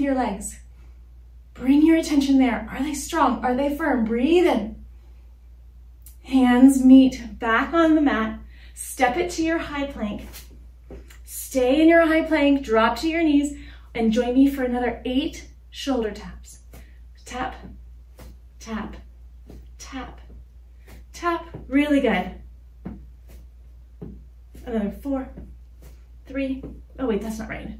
legs? Bring your attention there. Are they strong? Are they firm? Breathe in. Hands meet back on the mat. Step it to your high plank. Stay in your high plank, drop to your knees, and join me for another 8 shoulder taps. Tap, tap, tap, tap. Really good. Another 4, 3. Oh wait, that's not right.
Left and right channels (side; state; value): both; identical; correlation 1.00